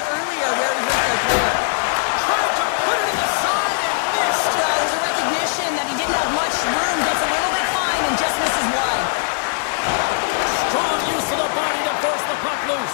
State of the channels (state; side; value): silent; right; digital silence